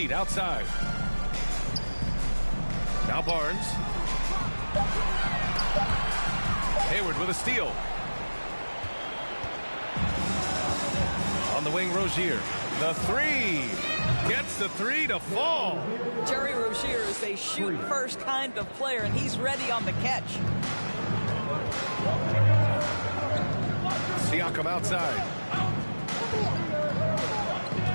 outside. Now Barnes. Hayward with a steal. On the wing, Rozier. The 3. Gets the 3 to fall. Terry Rozier is a shoot-first kind of player, and he's ready on the catch. Siakam outside.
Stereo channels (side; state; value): both; inverted; correlation -1.00